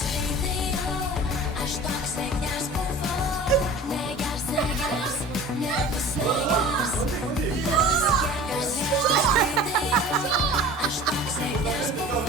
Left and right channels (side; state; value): both; normal; correlation 0.41